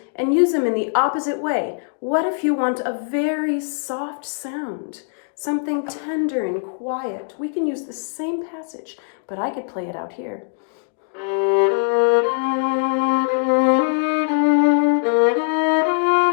and use them in the opposite way. What if you want a very soft sound, something tender and quiet? We can use the same passage, but I could play it out here.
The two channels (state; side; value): silent; right; digital silence